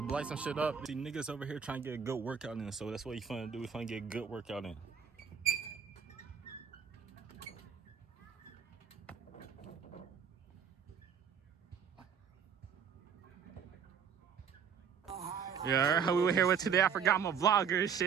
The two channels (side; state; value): left; quieter; 7.2 dB